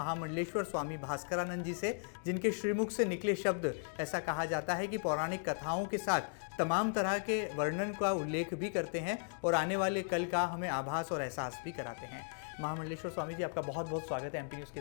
स्वामी भास्करानंद जी से, जिनके श्रीमुख से निकले शब्द ऐसा कहा जाता है कि पौराणिक कथाओं के साथ तमाम तरह के वर्णन का उल्लेख भी करते हैं और आने वाले कल का हमें आभास और एहसास भी कराते हैं। महामंडलेश्वर स्वामी जी, आपका बहुत बहुत स्वागत है एमपी न्यूज़ के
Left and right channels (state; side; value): silent; right; digital silence